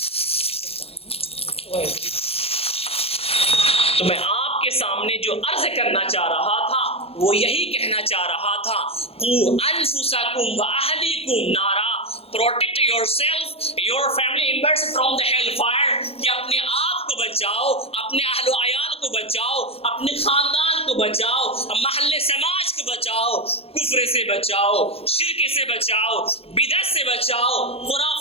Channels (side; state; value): right; late; 0.28 ms